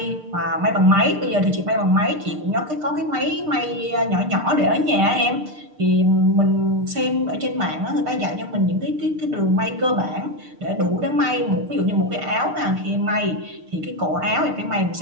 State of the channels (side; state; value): left; late; 6.6 ms